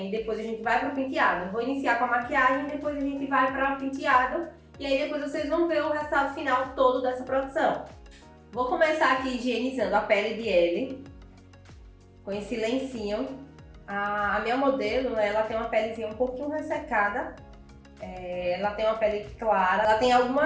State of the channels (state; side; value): identical; both; correlation 1.00